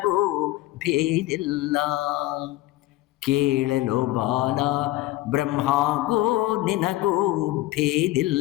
ಭೇದಿಲ್ಲ. ಕೇಳಲು ಬಾಲ ಬ್ರಹ್ಮಗೂ ನಿನಗೂ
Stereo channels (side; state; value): right; quieter; 16.9 dB